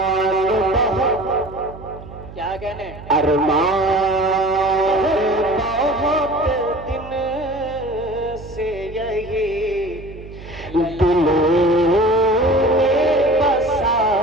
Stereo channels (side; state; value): right; noise; hum, 15 dB below the sound